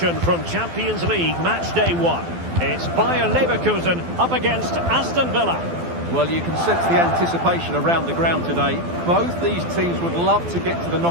from Champions League Match Day 1. It's Bayer Leverkusen up against Aston Villa. Well, you can sense the anticipation around the ground today. Both these teams would love to get to the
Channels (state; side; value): late; left; 12 ms